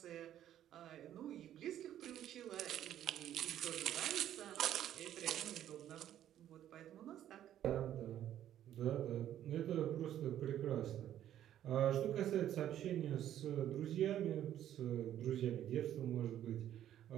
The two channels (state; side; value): quieter; left; 11.4 dB